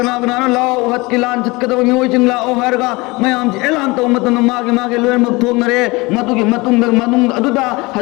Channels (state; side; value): quieter; right; 24.0 dB